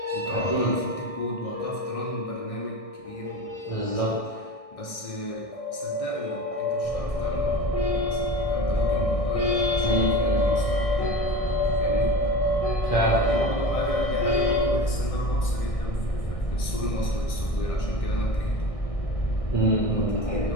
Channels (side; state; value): right; late; 1.6 ms